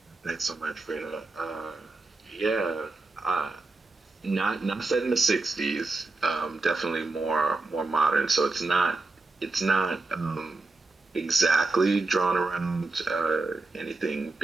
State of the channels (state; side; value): quieter; left; 3.4 dB